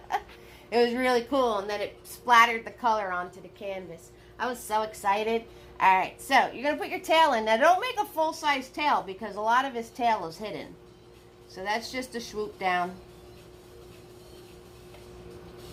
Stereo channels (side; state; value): both; identical; correlation 1.00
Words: it was really cool. And then it splattered the color onto the canvas. I was so excited. All right, so you're going to put your tail in. Now, don't make a full-size tail because a lot of his tail is hidden. So that's just a swoop down.